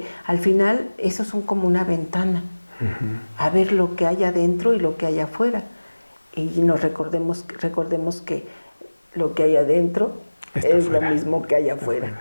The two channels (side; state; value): both; inverted; correlation -1.00